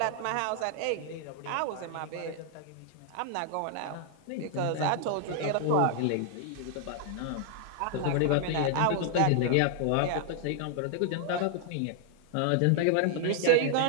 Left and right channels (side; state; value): both; different; correlation 0.00